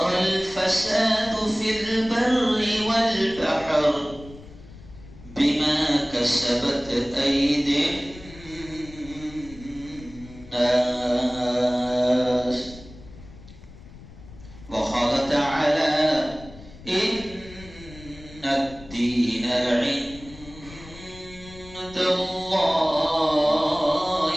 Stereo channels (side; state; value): left; noise; rumble, 18 dB below the sound